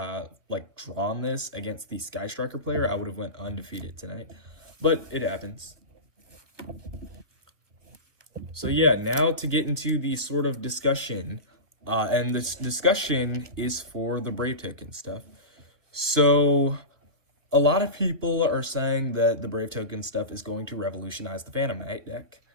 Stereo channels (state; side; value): late; left; 1.3 ms